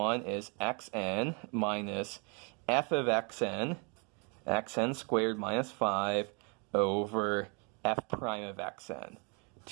is xn minus f of xn squared minus 5 over f prime of xn,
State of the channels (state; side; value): quieter; left; 34.5 dB